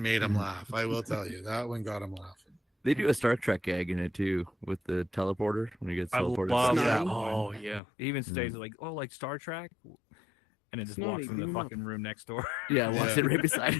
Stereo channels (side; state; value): right; drops out; at 7.8 s